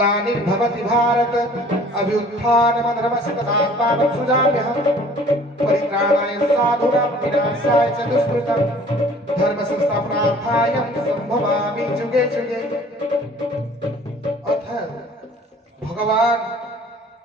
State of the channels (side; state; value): both; normal; correlation 0.51